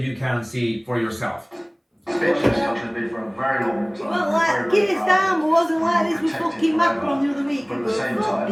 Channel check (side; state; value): both; identical; correlation 1.00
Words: can see for yourself. Well, Kier Starmer wasn't like this with fucking Macron the other week. But at the same time,